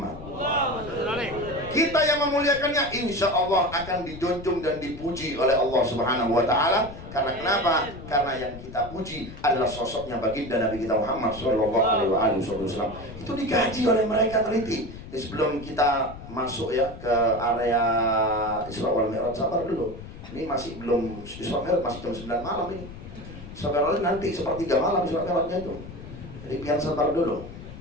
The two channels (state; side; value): noise; left; rumble, 13 dB below the sound